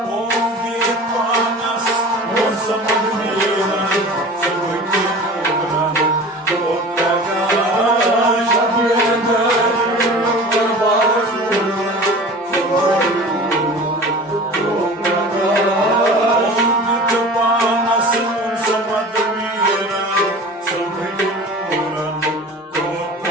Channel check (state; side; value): normal; both; correlation 0.39